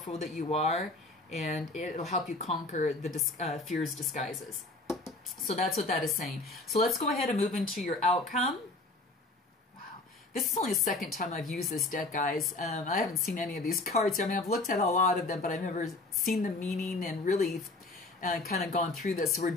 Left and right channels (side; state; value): right; quieter; 3.0 dB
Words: that you are, and it'll help you conquer the fear's disguises. So that's what that is saying. So let's go ahead and move into your outcome. Wow. This is only the second time I've used this deck, guys. I haven't seen any of these cards. I mean, I've looked at a lot of them, but I've never seen the meaning and really kind of gone through this. So we're